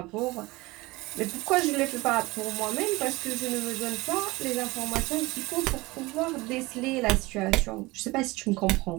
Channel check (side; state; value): left; quieter; 21.5 dB